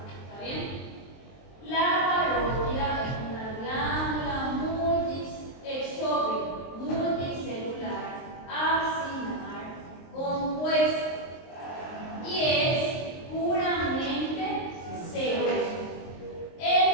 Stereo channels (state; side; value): late; right; 23 ms